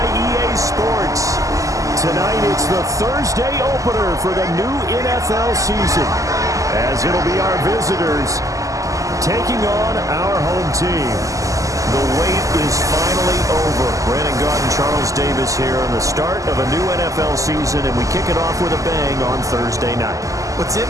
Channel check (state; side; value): late; left; 0.16 ms